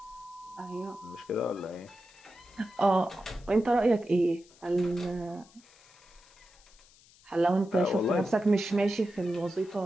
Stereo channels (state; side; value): noise; left; hiss, 27 dB below the sound